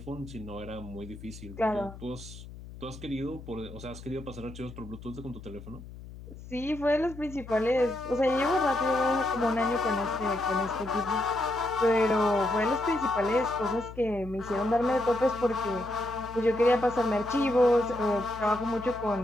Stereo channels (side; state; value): left; noise; hum, 15 dB below the sound